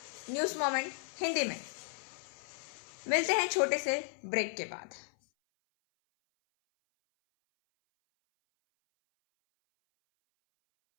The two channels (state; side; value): silent; right; 55 dB below the other